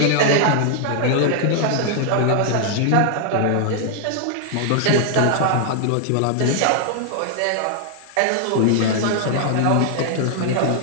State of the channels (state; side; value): different; both; correlation 0.00